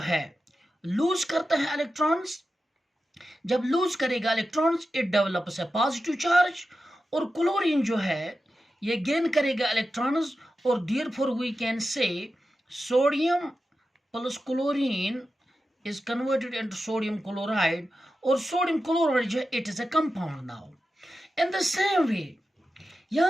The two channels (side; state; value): both; normal; correlation 0.91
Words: लूज करता है इलेक्ट्रॉन्स। जब लूज करेगा electrons, it develops a positive charge. और क्लोरीन जो है ये गेन करेगा इलेक्ट्रॉन्स, और therefore we can say sodium plus chlorine is converted into sodium chloride, और sodium chloride जो है it is a compound now. In the same way,